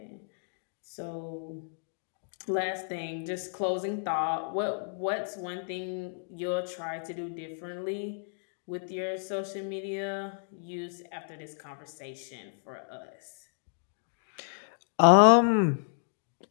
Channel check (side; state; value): right; silent; digital silence